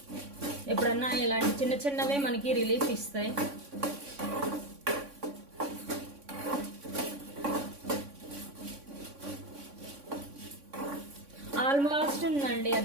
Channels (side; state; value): left; late; 3.6 ms